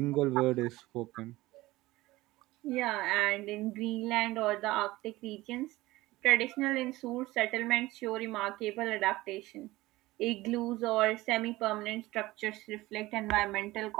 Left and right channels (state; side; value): quieter; left; 18.8 dB